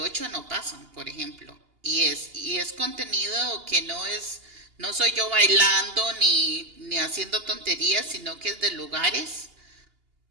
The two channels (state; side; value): late; left; 2.8 ms